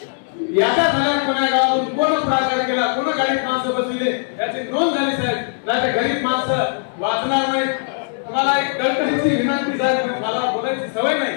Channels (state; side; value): silent; right; 66 dB below the other